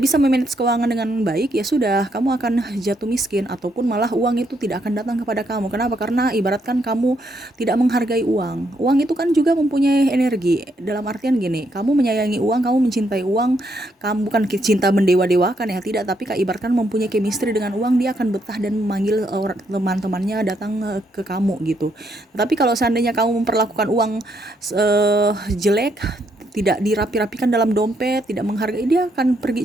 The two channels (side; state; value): both; normal; correlation 0.75